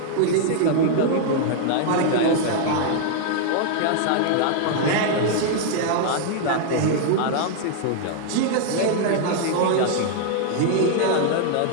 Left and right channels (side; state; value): both; different; correlation 0.00